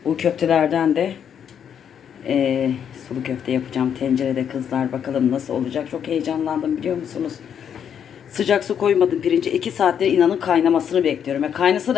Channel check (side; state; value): right; quieter; 8.3 dB